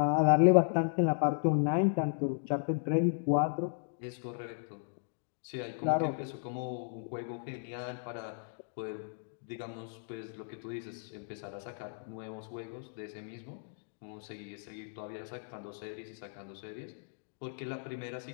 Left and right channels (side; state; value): right; silent; digital silence